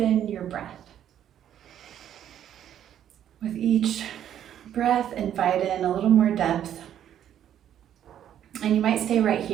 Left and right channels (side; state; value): left; quieter; 10.4 dB